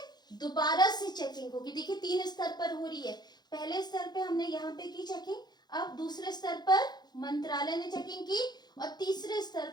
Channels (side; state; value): right; late; 0.20 ms